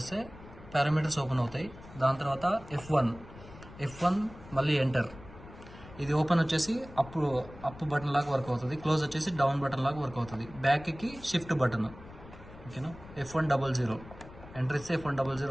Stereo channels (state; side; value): noise; left; rumble, 18 dB below the sound